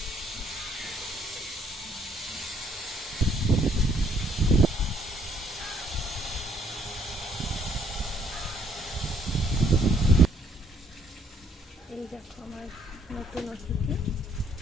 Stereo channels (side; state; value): both; normal; correlation 0.65